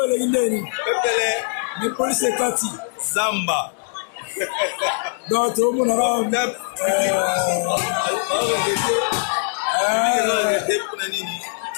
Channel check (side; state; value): right; silent; 65 dB below the other